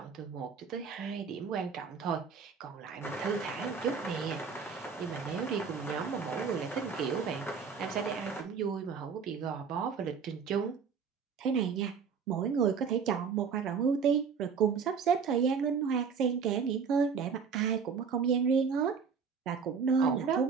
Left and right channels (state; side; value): quieter; left; 6.0 dB